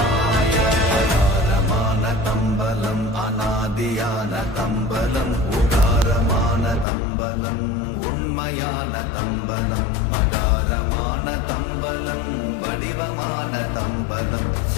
அகாரமான தம்பலம் அநாதியான தம்பலம் உகாரமான தம்பலம் உண்மையான தம்பலம் மகாரமான தம்பலம் வடிவமான தம்பலம்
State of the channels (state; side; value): drops out; right; at 6.9 s